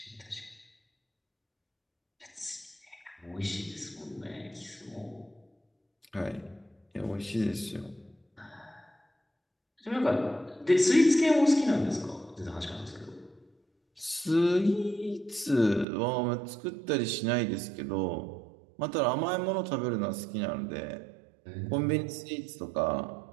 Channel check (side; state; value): left; drops out; at 15.9 s